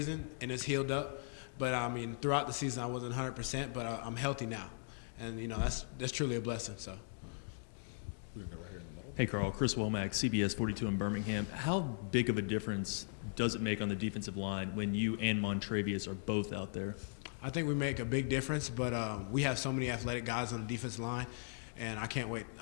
and it's healed up. But throughout the season I wasn't 100%, but I'm healthy now, and that's truly a blessing. So. Hey Carl, Chris Womack, CBS 42 in Birmingham. How big of a difference does it make on the defensive line when you and Montrevious are both out there? I think we make a big difference, but we have so many athletic guys on the defensive line, and I can't wait.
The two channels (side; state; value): right; silent; digital silence